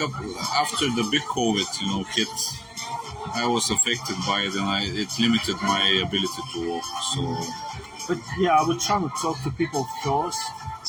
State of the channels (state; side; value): identical; both; correlation 1.00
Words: after the big COVID, hit, I was affected by it, and it limited my ability to walk. So, but yeah, I would try to talk to people first,